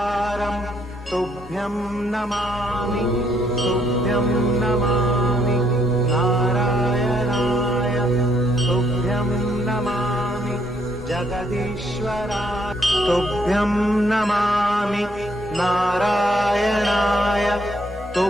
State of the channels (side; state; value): both; normal; correlation 0.71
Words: तुभ्यं नमामि तुभ्यं नमामि नारायणाय तुभ्यं नमामि जगदीश्वराय तुभ्यं नमामि नारायणाय